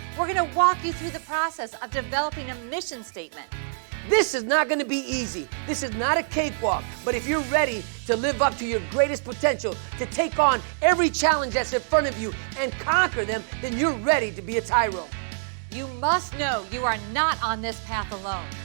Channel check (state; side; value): silent; left; digital silence